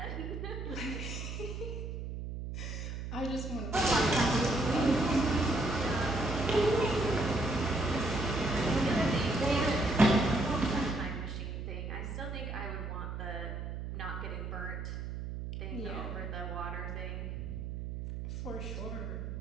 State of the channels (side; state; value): right; noise; hum, 6 dB below the sound